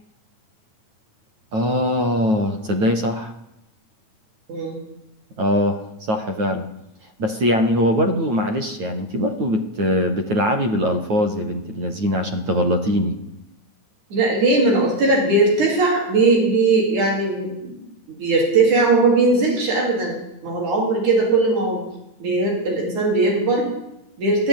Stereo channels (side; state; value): left; late; 9.3 ms